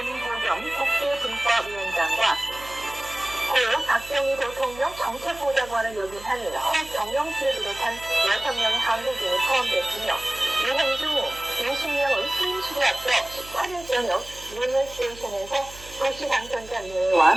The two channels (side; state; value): right; noise; hum, 19 dB below the sound